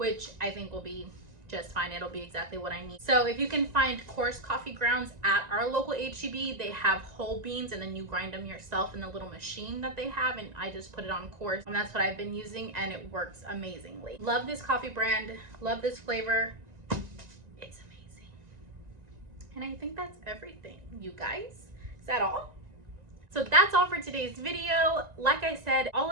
I think will be just fine. It'll be exactly what I need. So if you can find coarse coffee grounds at our local HEB, they have whole beans, and then you grind them yourself in the little machine that they have, and I just put it on coarse, and that's what I've been using, and it works amazingly. Love this coffee brand, love this flavor. It's amazing. And I think that's everything, you guys. Is that all? So that's all for today's video. Like I said, all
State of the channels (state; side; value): late; left; 1.9 ms